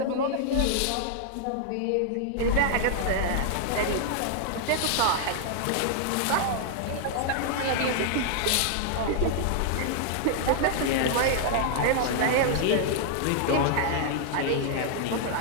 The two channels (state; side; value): different; both; correlation -0.01